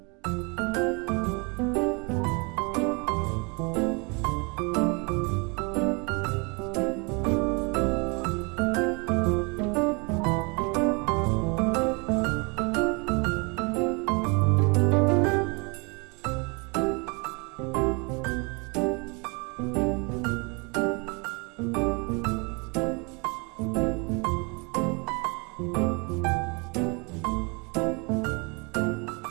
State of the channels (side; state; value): left; quieter; 31.0 dB